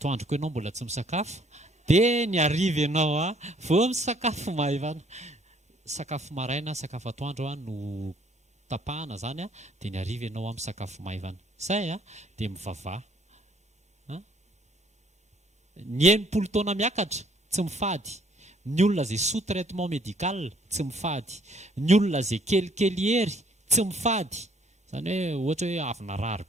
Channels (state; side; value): normal; both; correlation 0.63